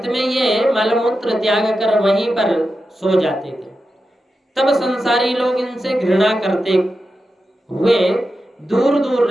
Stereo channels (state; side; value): normal; both; correlation 0.90